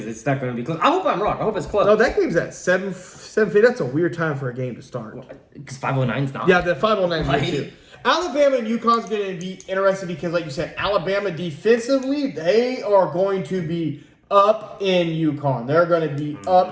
it's not gonna be close. I hope I'm wrong. I hope it's close. No, that game's at 7:50. That's a weird time for a game to start. Because 509's not. Yeah, the 509 Right. too. Alabama and UConn's going to be interesting because, like you said, Alabama defensively, they are going to be up in UConn. They're going to be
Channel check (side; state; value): both; identical; correlation 1.00